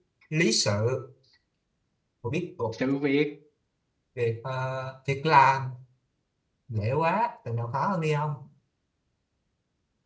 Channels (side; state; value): both; identical; correlation 1.00